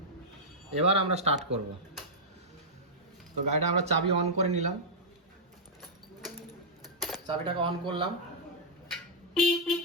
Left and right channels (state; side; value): normal; both; correlation -0.10